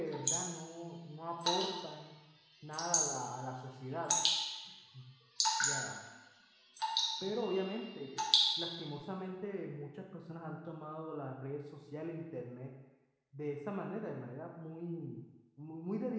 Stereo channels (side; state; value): both; identical; correlation 1.00